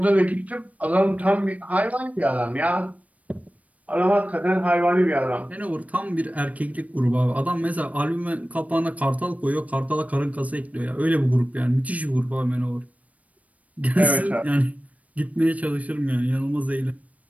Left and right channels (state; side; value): late; left; 0.070 ms